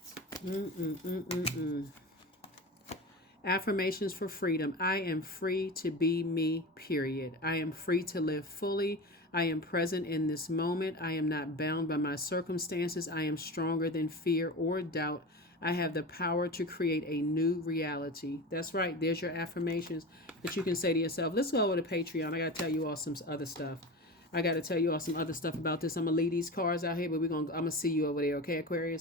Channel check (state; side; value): normal; both; correlation 0.29